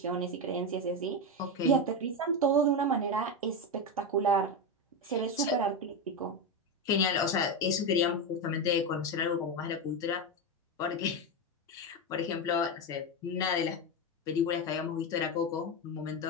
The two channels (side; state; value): both; normal; correlation 0.12